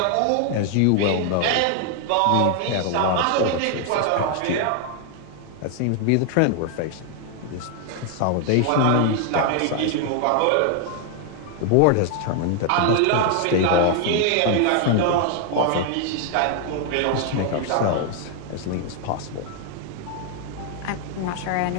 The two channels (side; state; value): both; different; correlation 0.00